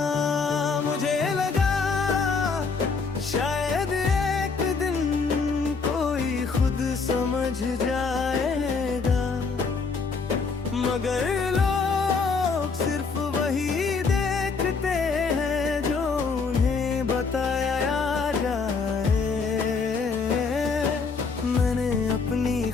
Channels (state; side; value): quieter; right; 4.8 dB